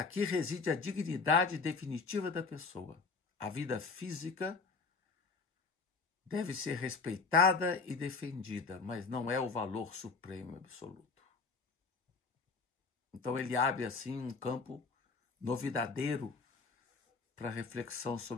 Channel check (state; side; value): quieter; right; 4.5 dB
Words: reside a dignidade definitiva da pessoa. A vida física deve ser respeitada e defendida, mas não é o valor supremo e absoluto. Então ele abre assim um campo novidadeiro para reflexão